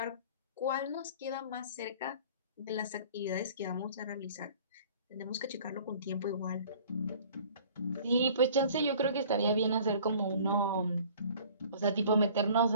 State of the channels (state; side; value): inverted; both; correlation -0.49